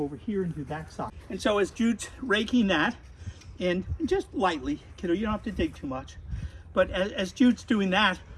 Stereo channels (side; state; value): both; identical; correlation 1.00